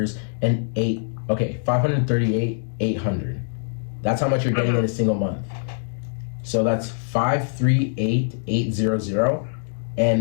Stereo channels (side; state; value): right; silent; digital silence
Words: and $538,800. That's how much you're getting in a single month. So that's 538,800,